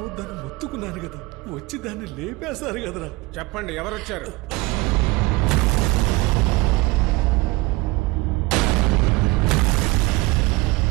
మొత్తుకున్నాను కదా, వచ్చి దాన్ని లేపేశారు కదరా. చెప్పండి, ఎవరొచ్చారు?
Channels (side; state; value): left; quieter; 21.7 dB